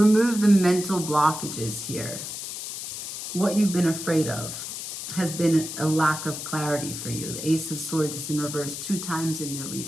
the mental blockages here. What you've been afraid of has been a lack of clarity for you. The Ace of Swords is in reverse 2 times in your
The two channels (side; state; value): left; noise; hiss, 7 dB below the sound